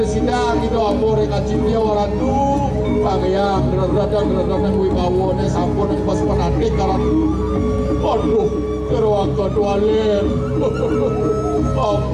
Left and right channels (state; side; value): identical; both; correlation 1.00